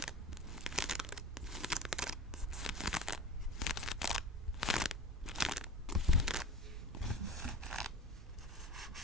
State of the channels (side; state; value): both; normal; correlation 0.34